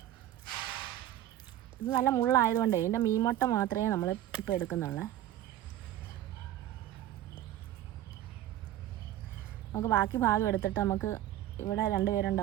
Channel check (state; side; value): quieter; left; 12.9 dB